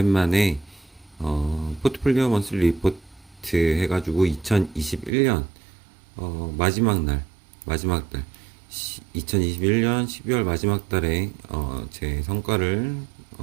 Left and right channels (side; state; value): left; drops out; at 5.1 s